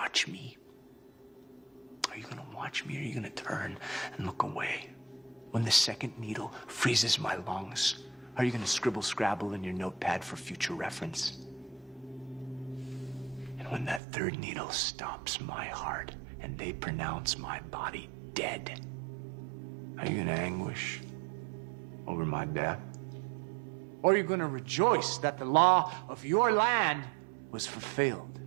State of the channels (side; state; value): left; drops out; at 14.0 s